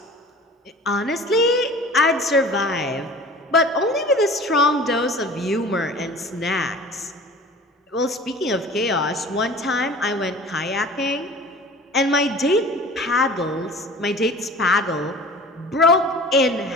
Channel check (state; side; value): normal; both; correlation 0.42